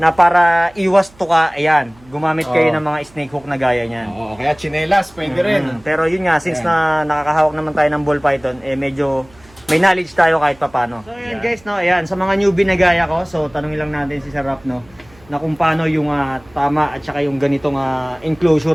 para iwas to ka, ayan, gumamit kayo ng mga snake hook na gaya niyan. Oo, kaya chinelas pwede rin. Pero yun nga, since na nakakahawak naman tayo ng ball python, medyo may knowledge tayo kahit papano. So ayan guys, no, ayan, sa mga newbie na gaya ko, so tanungin lang natin si Sir Rap, no, na kung paano yung tama at saka yung ganitong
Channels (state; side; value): noise; right; hum, 27 dB below the sound